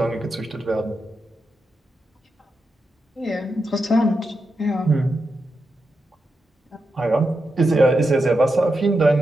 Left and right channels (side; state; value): both; normal; correlation 0.87